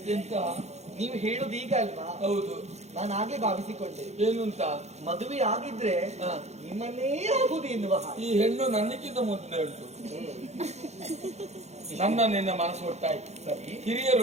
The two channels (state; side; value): late; left; 0.32 ms